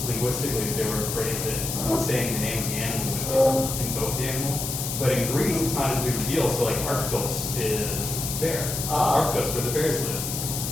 linguistically they were afraid that saying the name of the animal would invoke the animal. But in Greece, it's not as big a deal. So like Arctos is bear. Arctos, where the bears live.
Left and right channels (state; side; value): noise; left; hiss, 4 dB below the sound